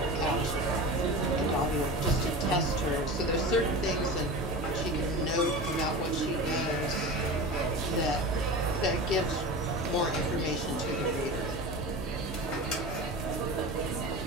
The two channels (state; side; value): normal; both; correlation 0.31